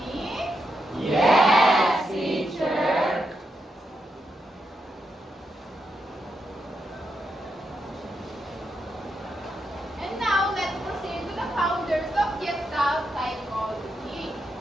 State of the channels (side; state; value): both; normal; correlation 0.83